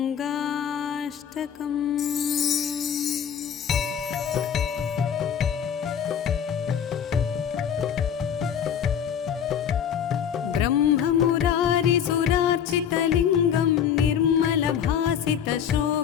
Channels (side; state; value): right; quieter; 8.4 dB